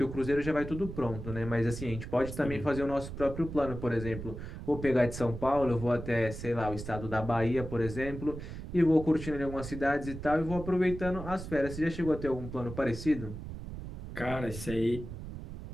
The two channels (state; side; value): noise; right; rumble, 9 dB below the sound